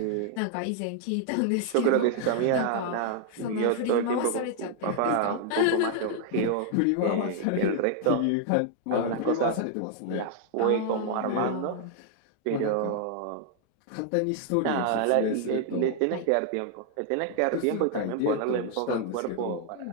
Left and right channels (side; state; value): both; different; correlation 0.00